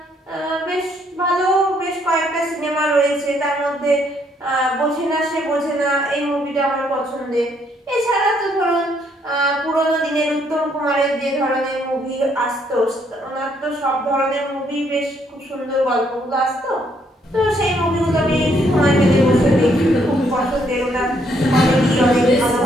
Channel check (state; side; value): normal; both; correlation 0.70